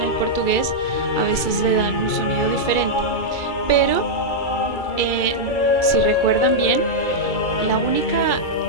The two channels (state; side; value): late; right; 2.3 ms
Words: el portugués a veces le dan un sonido diferente. Pero, si recuerdan bien, la única